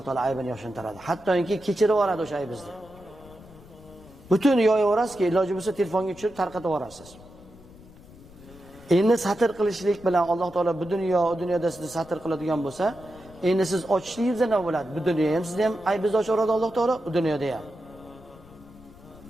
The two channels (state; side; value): noise; left; rumble, 21 dB below the sound